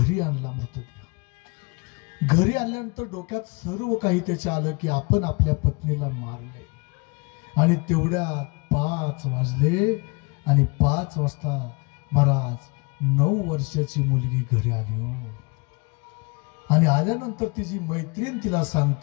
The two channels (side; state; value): right; quieter; 29.4 dB